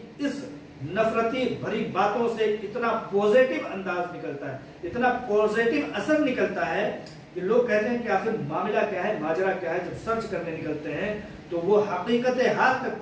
اس نفرتی بھری باتوں سے اتنا پوزیٹو انداز نکلتا ہے، اتنا پوزیٹو اثر نکلتا ہے کہ لوگ کہتے ہیں کہ آخر معاملہ کیا ہے، ماجرا کیا ہے۔ جب سرچ کرنے نکلتے ہیں تو وہ حقیقت حال تک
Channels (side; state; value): both; identical; correlation 1.00